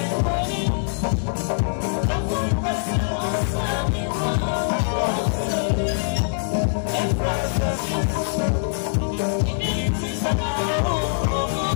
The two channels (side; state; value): right; silent; digital silence